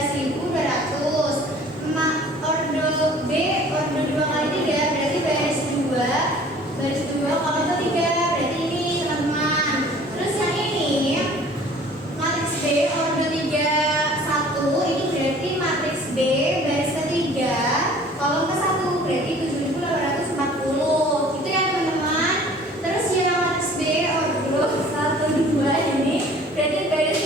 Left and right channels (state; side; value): normal; both; correlation 0.50